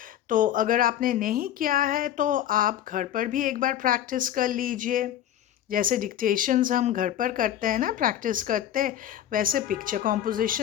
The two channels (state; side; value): quieter; right; 11.4 dB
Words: तो अगर आपने नहीं किया है तो आप घर पर भी एक बार प्रैक्टिस कर लीजिए. जैसे डिक्टेशंस हम घर पर करते हैं ना, प्रैक्टिस करते हैं, वैसे पिक्चर